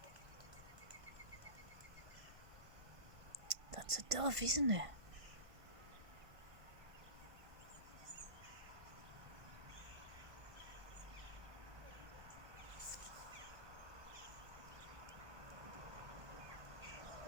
That's a dove, isn't it?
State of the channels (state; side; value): late; left; 1.5 ms